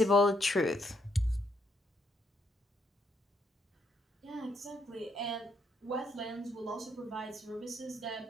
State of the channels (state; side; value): normal; both; correlation 0.75